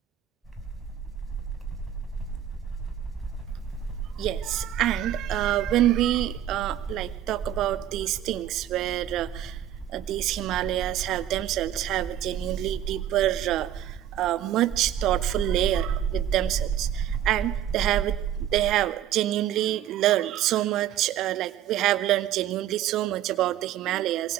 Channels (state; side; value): quieter; left; 11.0 dB